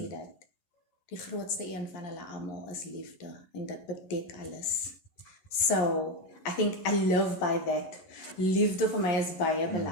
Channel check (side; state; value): right; late; 11 ms